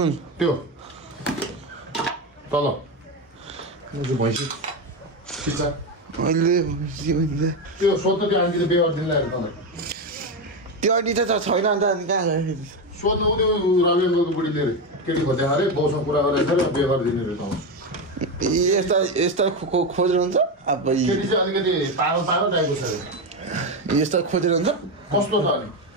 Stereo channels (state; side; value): normal; both; correlation 0.13